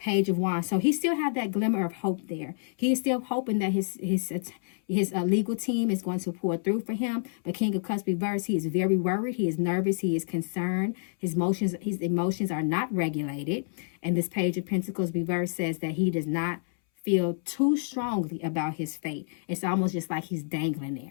of Wands. So he still had that glimmer of hope there. He is still hoping that his legal team is going to pour through for him. But King of Cups reverse, he is very worried. He is nervous. He is concerned. His emotions are not regulated. And this Page of Pentacles reverse says that he does not feel too strongly about his fate. It's almost just like he's dangling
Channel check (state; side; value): silent; right; 59 dB below the other